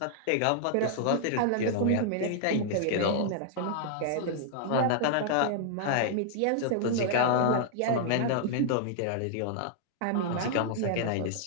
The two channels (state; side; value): different; both; correlation -0.01